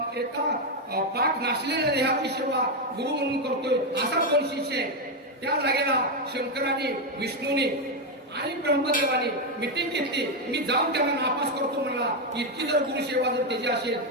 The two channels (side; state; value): both; normal; correlation 0.05